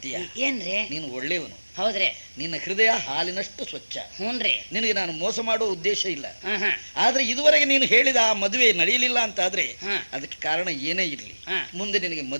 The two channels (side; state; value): both; inverted; correlation -1.00